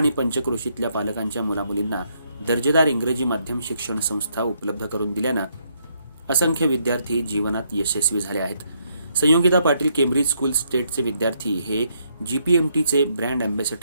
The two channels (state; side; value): inverted; both; correlation -0.74